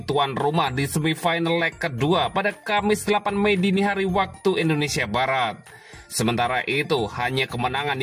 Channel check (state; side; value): identical; both; correlation 1.00